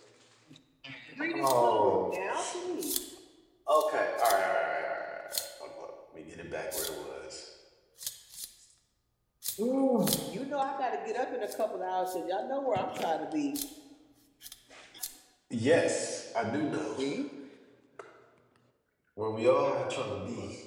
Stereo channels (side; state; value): both; identical; correlation 1.00